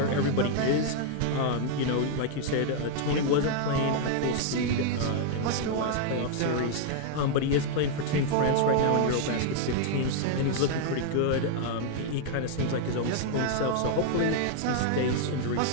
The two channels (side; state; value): both; different; correlation 0.00